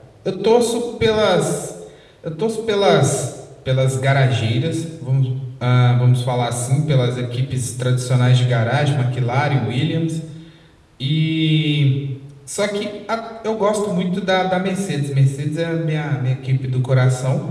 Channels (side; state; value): both; identical; correlation 1.00